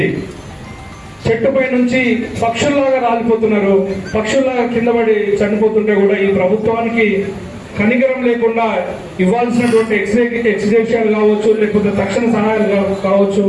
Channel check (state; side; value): identical; both; correlation 1.00